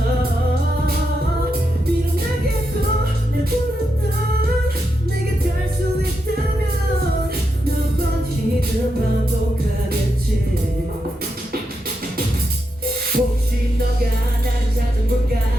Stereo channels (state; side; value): normal; both; correlation 0.85